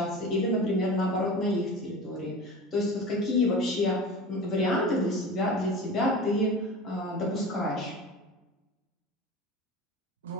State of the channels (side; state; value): both; normal; correlation 0.34